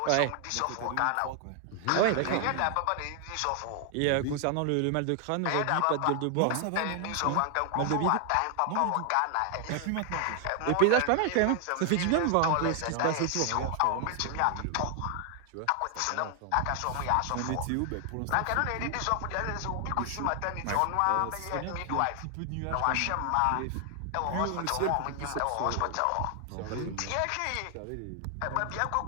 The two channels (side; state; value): both; different; correlation 0.00